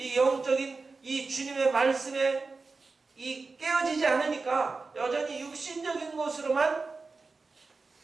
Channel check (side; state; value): left; quieter; 4.1 dB